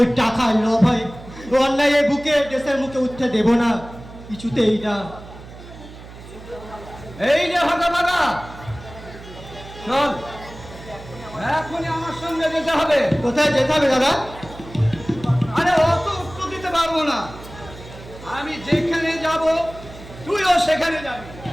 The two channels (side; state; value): right; noise; hum, 16 dB below the sound